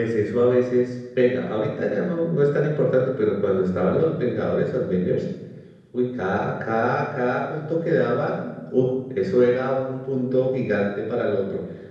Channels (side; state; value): both; identical; correlation 1.00